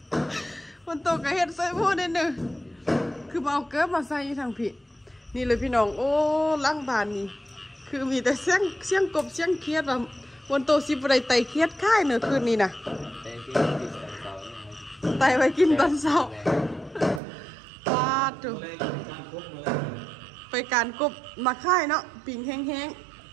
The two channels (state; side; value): drops out; left; at 17.2 s